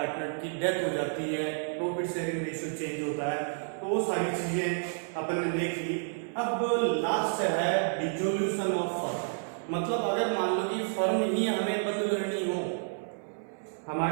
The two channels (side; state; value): left; silent; 58 dB below the other